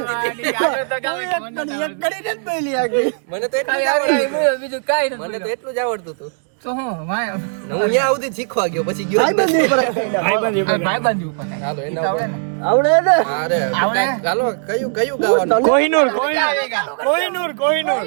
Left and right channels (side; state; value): left; silent; digital silence